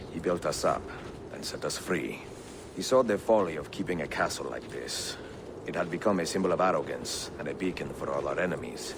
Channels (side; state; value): both; identical; correlation 1.00